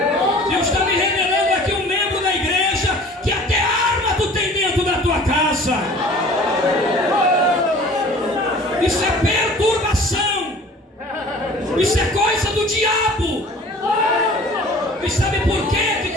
Deus está me revelando aqui um membro da igreja que até arma tu tem dentro da tua casa. Isso é perturbação. Isso é coisa do diabo. E sabe por quê que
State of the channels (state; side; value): normal; both; correlation 0.46